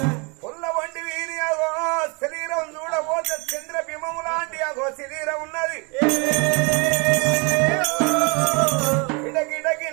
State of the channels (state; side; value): quieter; left; 31.5 dB